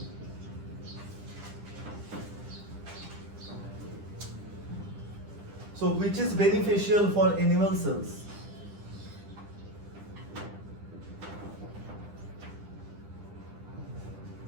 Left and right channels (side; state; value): left; late; 10 ms